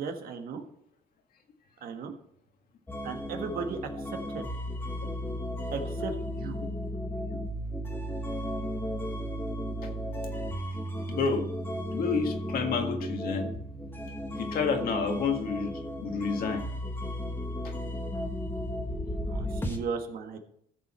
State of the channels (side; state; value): both; normal; correlation 0.60